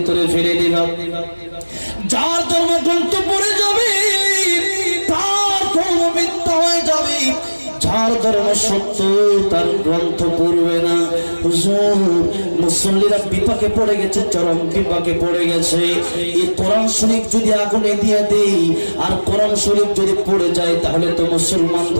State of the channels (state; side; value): inverted; both; correlation -1.00